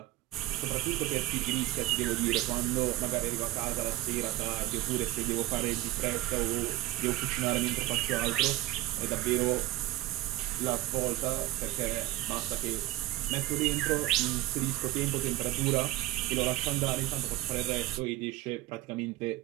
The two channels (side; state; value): left; quieter; 17.0 dB